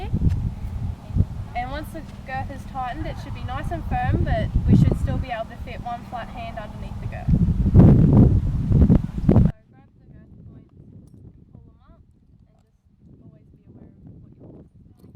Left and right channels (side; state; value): both; identical; correlation 1.00